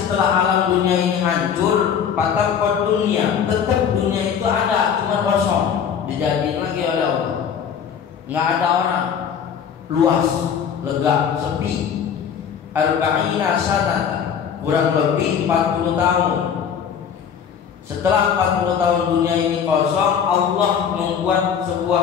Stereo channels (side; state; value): right; quieter; 7.7 dB